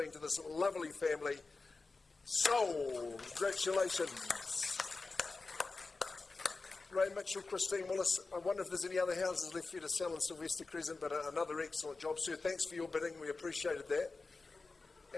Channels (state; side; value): quieter; right; 3.8 dB